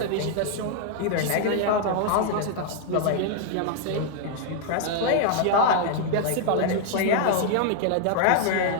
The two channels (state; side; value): different; both; correlation 0.00